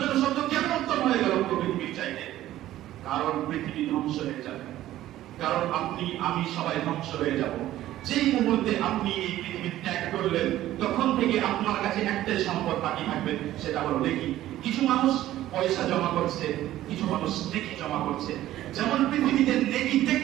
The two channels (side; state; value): left; quieter; 14.1 dB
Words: ছোট শব্দ কেন উত্তম হয়ে গেল পুরো পৃথিবীর চাইতে? কারণ পৃথিবী ধ্বংস হয়ে যাবে, কারণ আপনি আমি সবাই ধ্বংস হয়ে যাব। যেই মুহূর্তে আপনি এই পৃথিবী ত্যাগ করলেন তখন থেকে আপনার কাছে একটাই সম্পদ বাকি থাকবে, সেটা হলো নেকি। কিছু মানুষ পয়সা জমা করছে, কিছু মানুষ নেকি জমা করছে। যেমন পৃথিবীতে নেকি